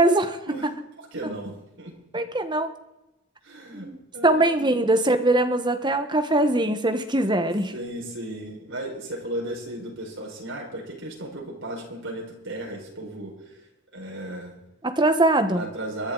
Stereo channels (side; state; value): both; normal; correlation 0.44